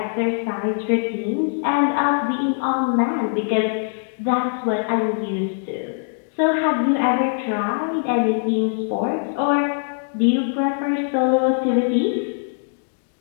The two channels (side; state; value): right; silent; digital silence